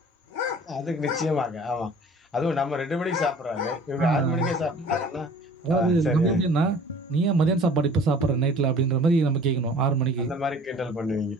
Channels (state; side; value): normal; both; correlation 0.48